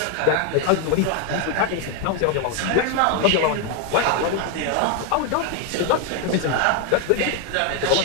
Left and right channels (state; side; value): different; both; correlation 0.01